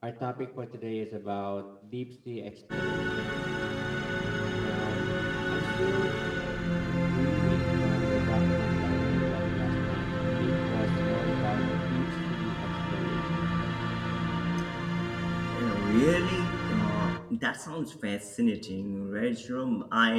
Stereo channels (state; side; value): identical; both; correlation 1.00